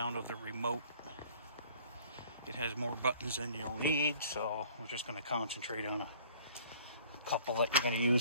of the remote. It has more buttons than you'll need, so we're just going to concentrate on a couple that you're going to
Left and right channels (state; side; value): inverted; both; correlation -0.54